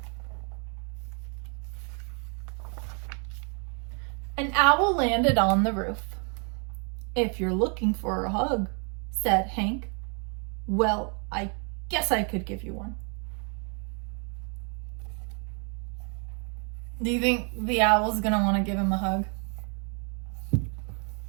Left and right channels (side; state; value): left; quieter; 39.4 dB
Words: An owl landed on the roof. "If you're looking for a hug," said Hank, "well, I Guess I could give you one. Do you think the owl's gonna want to give him a hug?